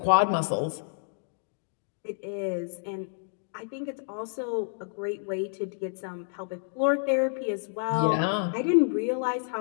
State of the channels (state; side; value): silent; right; digital silence